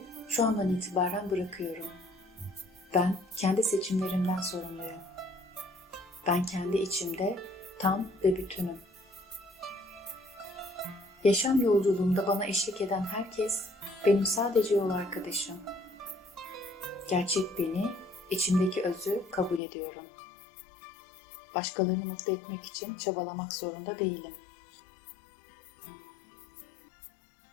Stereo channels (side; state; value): right; drops out; at 19.6 s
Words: şu andan itibaren bırakıyorum. Ben kendi seçimlerimden sorumluyum. Ben kendi içimde tam ve bütünüm. Yaşam yolculuğumda bana eşlik eden herkes benim sadece yol arkadaşım. Gerçek beni, içimdeki özü kabul ediyorum. Başkalarını mutlu etmek için çabalamak zorunda değilim.